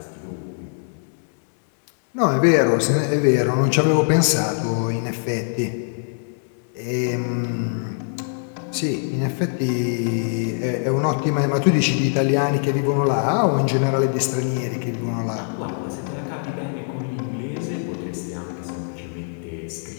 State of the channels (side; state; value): right; silent; digital silence